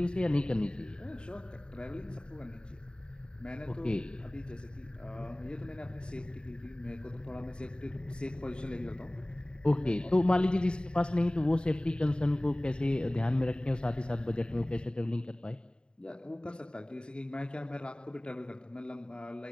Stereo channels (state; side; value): late; right; 0.050 ms